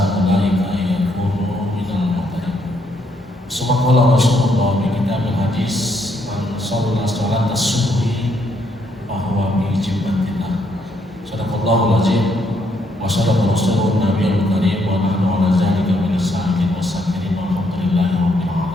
ulaika an yakunu minal muhtadin. Subhanallah Rasulullah bi kitabil hadis man shalla salata subhi fa huwa bi jibbatillah. Sadaqallahul azim wa sadaqa rasulun nabiyul karim wa nahnu ala zalika min as-sa'idin was-sakirin walhamdulillahi rabbil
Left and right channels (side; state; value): both; normal; correlation 0.73